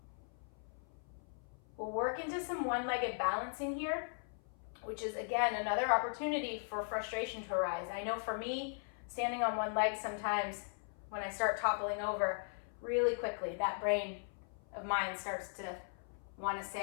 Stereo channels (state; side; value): silent; right; 52 dB below the other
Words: We'll work into some one-legged balancing here, which is, again, another opportunity for frustration to arise. I know for me, standing on one leg sometimes, when I start toppling over really quickly, that brain of mine starts to want to